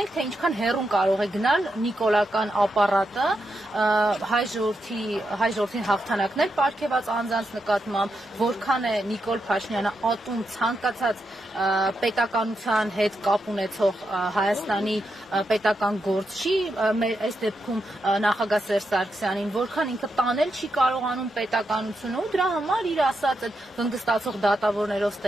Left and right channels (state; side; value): normal; both; correlation 0.84